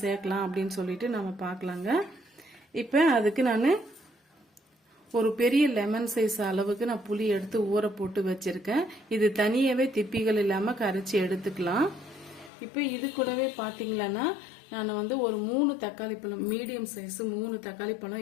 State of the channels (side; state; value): right; drops out; at 12.5 s